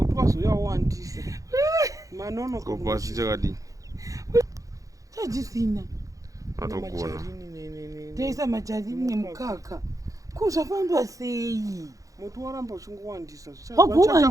wazoyawandisa manono kopasi chakadi chajisina atogona teisa majarini nemukaka kuzvafamba sei mutu waramba uchingowandisa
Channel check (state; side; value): late; left; 0.16 ms